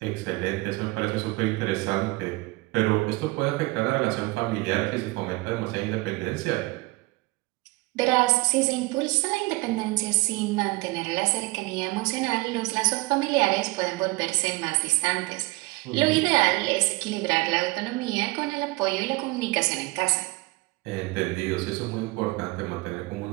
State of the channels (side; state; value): left; quieter; 23.2 dB